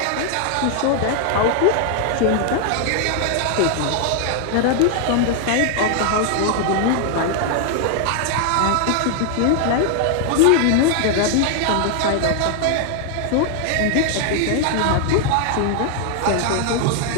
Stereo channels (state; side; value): different; both; correlation 0.00